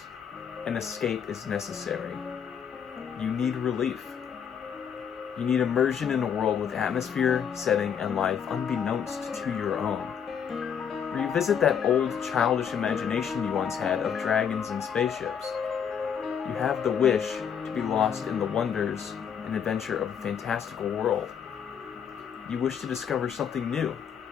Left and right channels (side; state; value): right; quieter; 7.6 dB